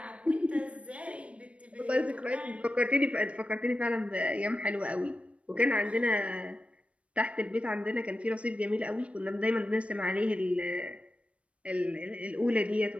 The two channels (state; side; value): late; left; 0.062 ms